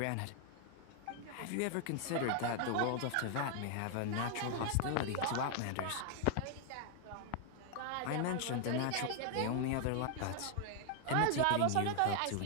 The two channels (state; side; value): different; both; correlation 0.00